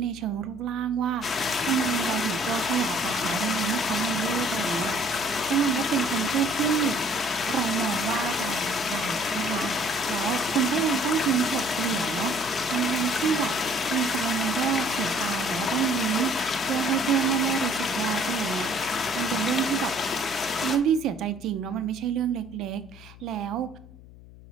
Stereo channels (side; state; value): left; noise; hum, 20 dB below the sound